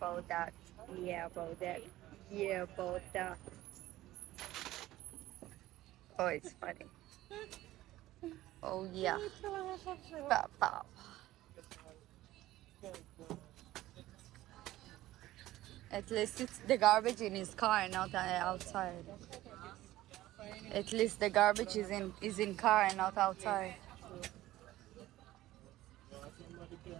that. Yeah, about that. Yeah, about that. Oh, it's funny. Oh, yeah. Papa. At least it's the garbage in his car, not outside. At least the garbage is in car and not outside.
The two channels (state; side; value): quieter; left; 15.8 dB